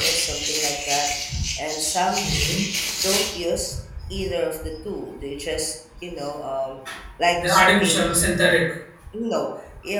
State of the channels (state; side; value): identical; both; correlation 1.00